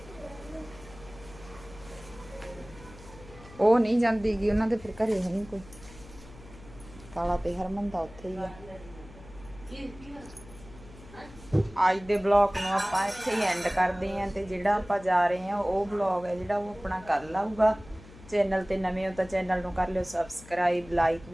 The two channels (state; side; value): noise; left; hum, 19 dB below the sound